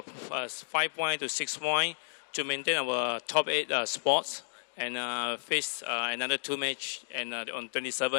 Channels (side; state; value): right; silent; digital silence